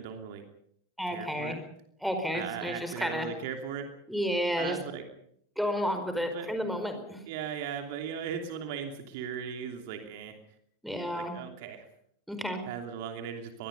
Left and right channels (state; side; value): normal; both; correlation 0.51